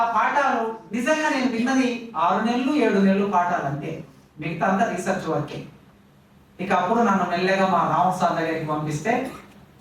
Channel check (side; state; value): both; identical; correlation 1.00